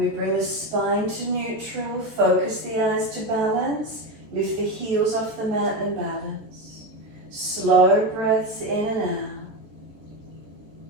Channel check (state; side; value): late; left; 13 ms